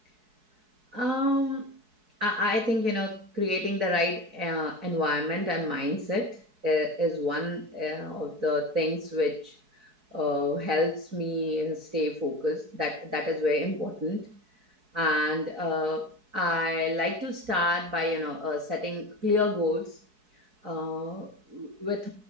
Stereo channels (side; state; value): left; late; 4.7 ms